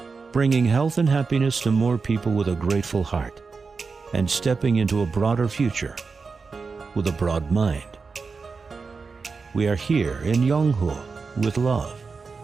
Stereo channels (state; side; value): quieter; left; 4.7 dB